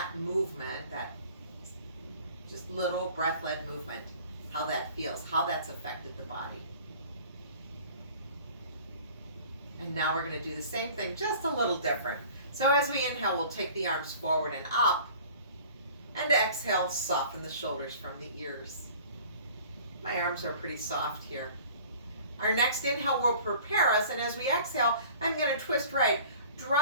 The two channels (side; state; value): both; inverted; correlation -0.47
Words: movement, that just little breath-led movement, how that feels, how that's affected the body. And now we're going to do the same thing, just a little different. So as we inhale, we'll take the arms forward and up. And exhale, soften the shoulders from the ears. My arms are pretty soft here. Our next inhale will prepare us, and as we exhale, I'm going to twist right,